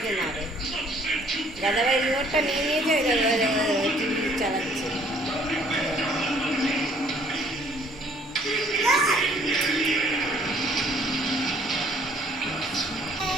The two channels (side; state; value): both; normal; correlation 0.60